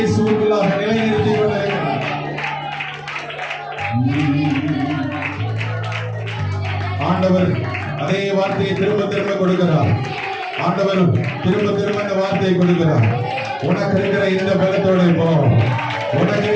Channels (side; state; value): both; identical; correlation 1.00